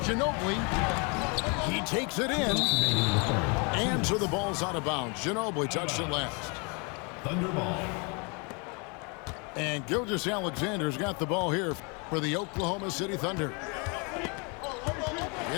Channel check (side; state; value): right; quieter; 32.8 dB